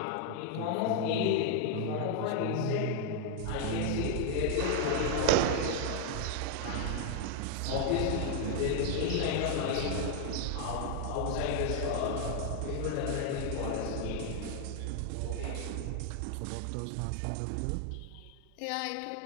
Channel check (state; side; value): different; both; correlation 0.00